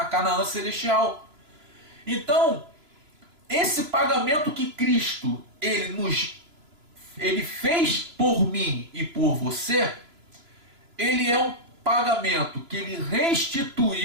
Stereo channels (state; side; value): late; left; 2.9 ms